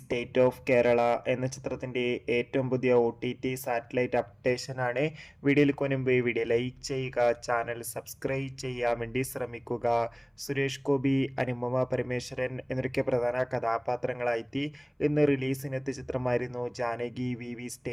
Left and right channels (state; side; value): identical; both; correlation 1.00